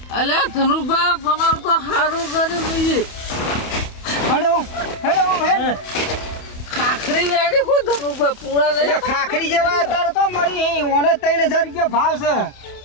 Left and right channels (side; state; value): right; late; 28 ms